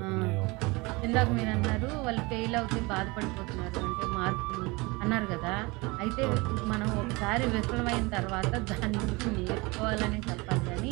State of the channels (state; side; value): quieter; left; 25.0 dB